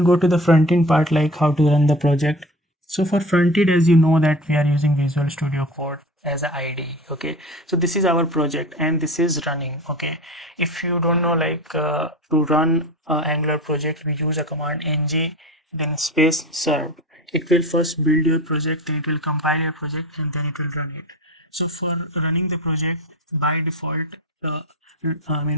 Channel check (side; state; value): both; normal; correlation 0.33